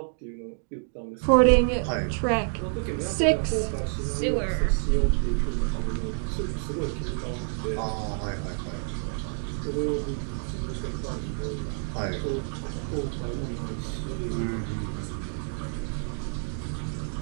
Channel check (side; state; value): left; silent; 57 dB below the other